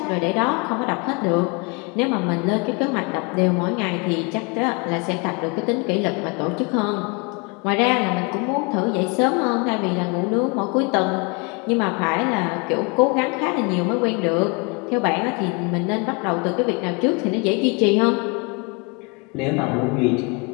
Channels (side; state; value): right; quieter; 31.3 dB